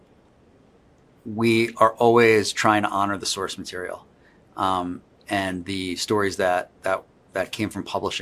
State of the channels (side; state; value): both; identical; correlation 1.00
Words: we are always trying to honor the source material, and the stories that came from